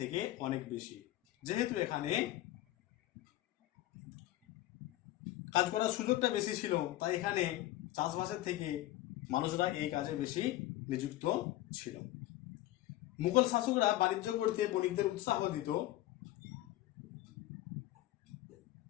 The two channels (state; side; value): quieter; right; 15.6 dB